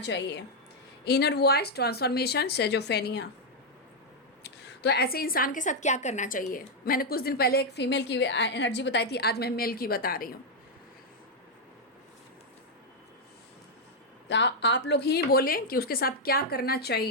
Inner voice transformation schizophrenia. तो ऐसे इंसान के साथ क्या करना चाहिए। मैंने कुछ दिन पहले एक फीमेल की एनर्जी बताई थी, आज मैं मेल की बता रही हूँ। तो आप लोग ही बोलें कि उसके साथ क्या करना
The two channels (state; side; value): normal; both; correlation -0.01